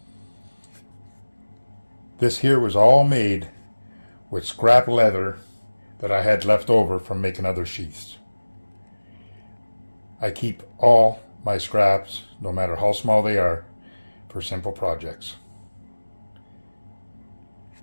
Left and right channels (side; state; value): both; inverted; correlation -1.00